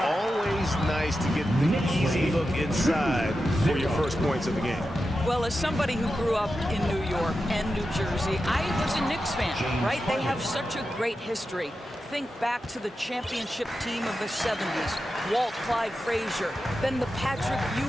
nice to get the easy look inside for your first points of the game. Well, as somebody who grew up in New York and New Jersey, I was a Knicks fan, right? They have such a great history. Think back to the championship team of the 70s, Walt Clyde Frazier, then the Patrick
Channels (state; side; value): normal; both; correlation 0.91